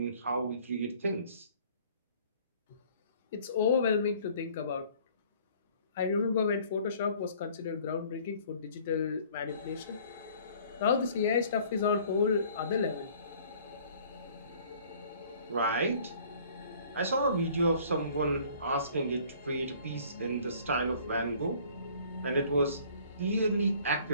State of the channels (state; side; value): inverted; both; correlation -0.54